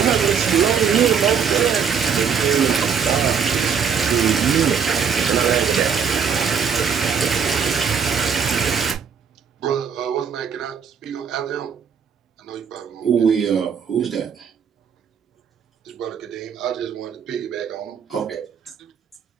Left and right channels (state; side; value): quieter; left; 6.8 dB